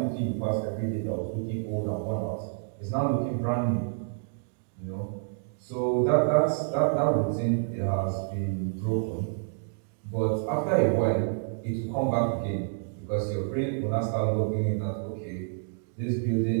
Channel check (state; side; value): silent; left; digital silence